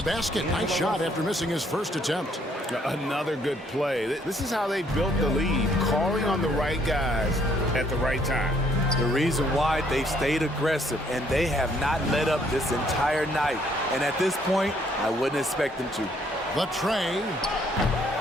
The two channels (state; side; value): normal; both; correlation 0.67